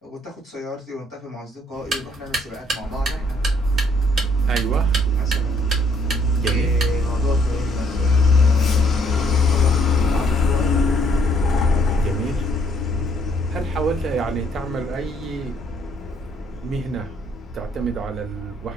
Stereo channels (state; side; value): normal; both; correlation 0.67